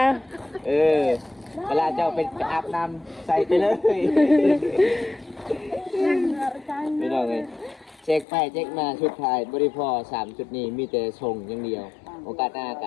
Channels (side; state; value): right; drops out; at 8.2 s